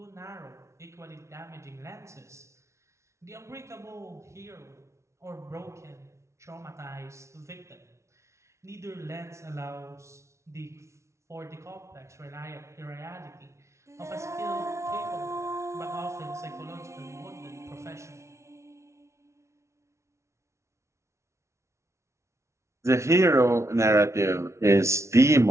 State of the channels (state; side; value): late; left; 0.13 ms